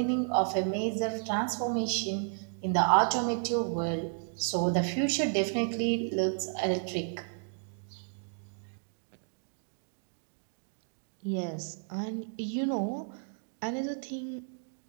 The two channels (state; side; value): silent; left; 56 dB below the other